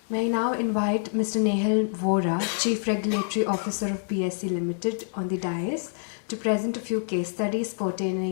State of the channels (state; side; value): silent; right; digital silence